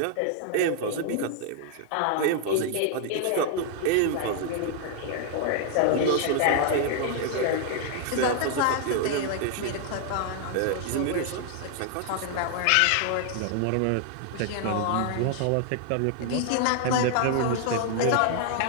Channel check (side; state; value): both; different; correlation 0.00